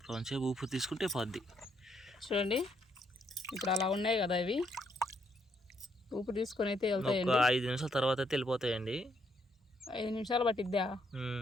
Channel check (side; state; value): both; normal; correlation 0.73